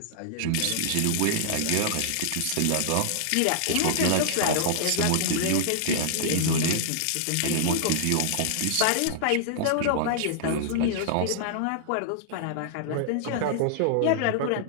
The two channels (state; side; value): different; both; correlation -0.01